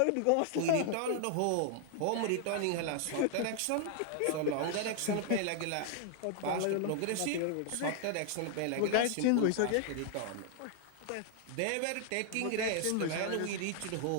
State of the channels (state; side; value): different; both; correlation 0.00